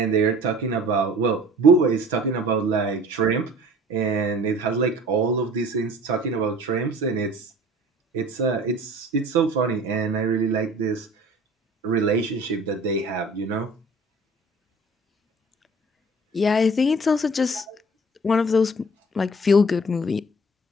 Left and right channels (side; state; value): both; normal; correlation 0.47